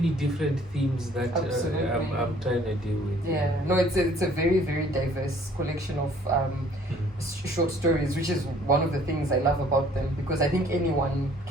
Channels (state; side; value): normal; both; correlation 0.57